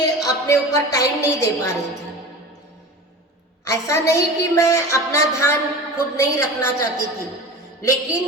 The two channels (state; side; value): normal; both; correlation 0.34